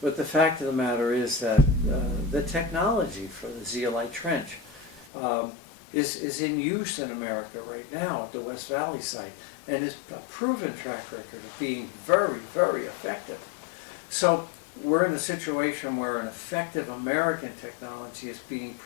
the fact of the matter is that the technology for the zeolite trench is in use in America right now at the West Valley site, and is a proven track record of being very, very effective. So we're in a situation where an effective American technology is being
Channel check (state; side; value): drops out; right; at 5.1 s